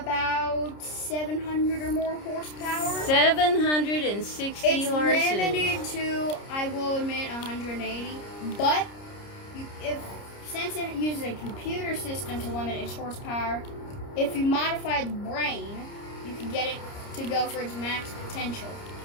700 or more horsepower. 760 horses. It's limited to, I will admit, 180. But since it uses a computer system to limit its horsepower, if you modify the brain, you can get it to go for its max potential.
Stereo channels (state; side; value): late; right; 30 ms